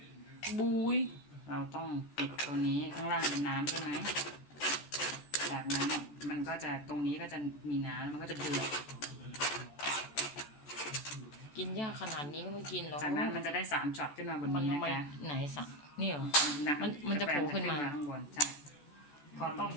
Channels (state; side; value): late; right; 14 ms